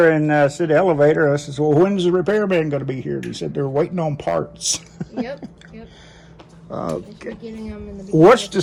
and said the elevator. I said, well, when's the repairman going to be here? He said they're waiting on parts. Yep. Okay. Getting them in the What's to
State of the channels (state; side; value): identical; both; correlation 1.00